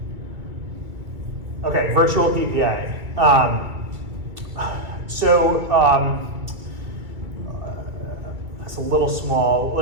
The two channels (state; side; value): late; left; 2.4 ms